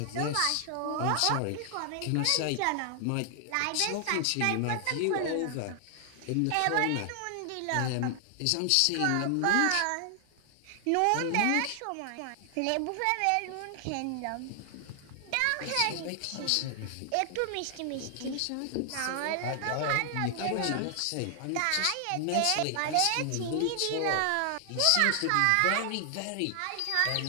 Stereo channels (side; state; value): both; different; correlation 0.00